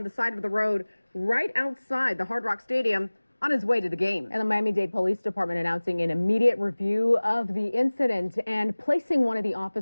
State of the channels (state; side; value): inverted; both; correlation -1.00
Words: the side of the road right outside the Hard Rock Stadium on his way to the game. And the Miami-Dade Police Department announcing an immediate review of the incident and placing one of the